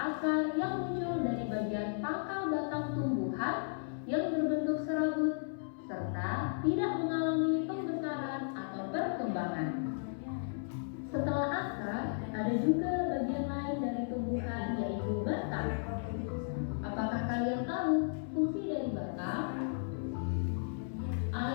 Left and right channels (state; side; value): silent; right; 55 dB below the other